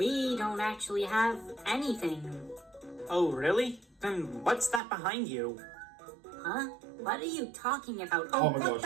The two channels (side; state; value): left; drops out; at 4.8 s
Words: don't actually have anything. Oh, really? Then what's that behind you? Huh? What are you talking about? Oh my what gosh.